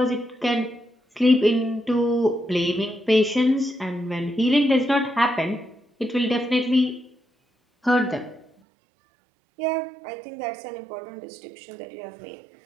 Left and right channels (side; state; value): left; drops out; at 8.5 s